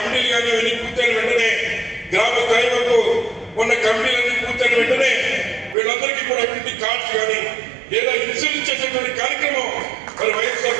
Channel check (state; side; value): drops out; left; at 5.8 s